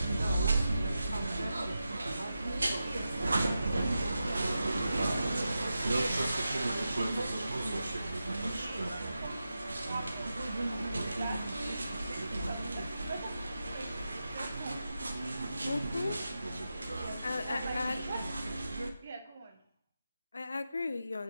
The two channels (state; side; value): inverted; both; correlation -0.90